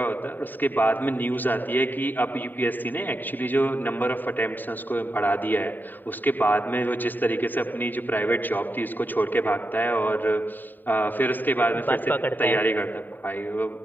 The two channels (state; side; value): late; right; 0.090 ms